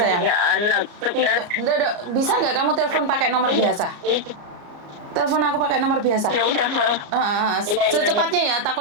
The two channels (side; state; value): left; late; 34 ms